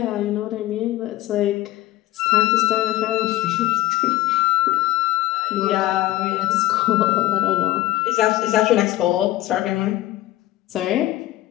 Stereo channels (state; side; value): quieter; right; 16.2 dB